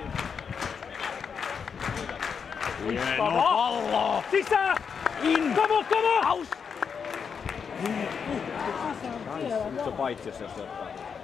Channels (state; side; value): quieter; right; 6.4 dB